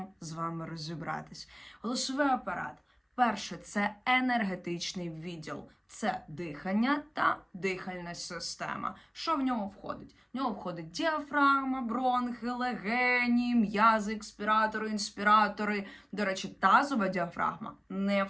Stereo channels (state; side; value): identical; both; correlation 1.00